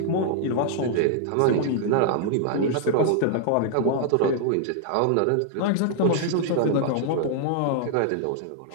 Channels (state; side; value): different; both; correlation -0.01